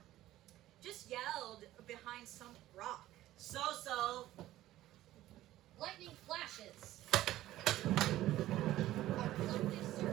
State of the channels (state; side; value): quieter; left; 14.9 dB